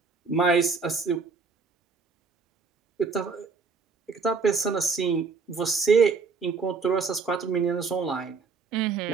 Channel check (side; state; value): left; quieter; 4.8 dB